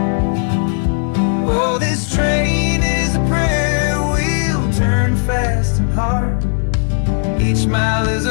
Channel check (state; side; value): silent; right; 69 dB below the other